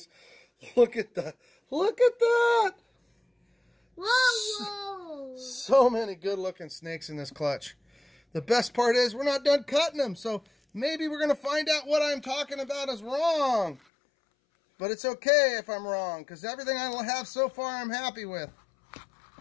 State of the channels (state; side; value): drops out; right; at 13.8 s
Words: Look at that. Whoa! So many good-looking snakes in this clutch. The best part is we're not done cutting them, so maybe we're going to find out what I'm talking about is wrong. But it's okay if I'm wrong, because everything I have so far I'm happy with.